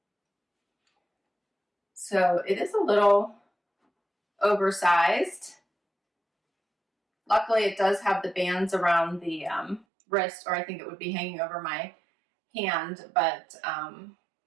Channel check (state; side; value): drops out; left; at 9.9 s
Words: So it is a little oversized. Luckily, it does have the bands around the wrist, or I think it would be hanging over my hand, but I